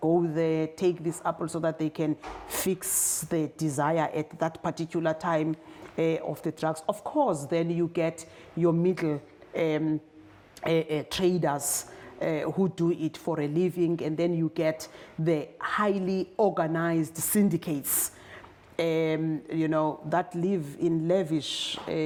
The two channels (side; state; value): both; identical; correlation 1.00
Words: go there, take this apple so that they can fix their desire at that particular time of the drugs. Of course, then you get your middle traders who do it for a living, and then you get the highly organized syndicates, that live in lavish